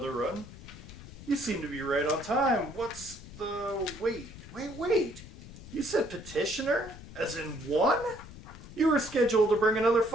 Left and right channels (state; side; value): noise; left; rumble, 15 dB below the sound